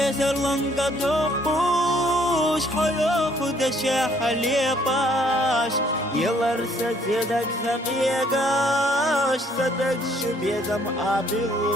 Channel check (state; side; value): normal; both; correlation 0.64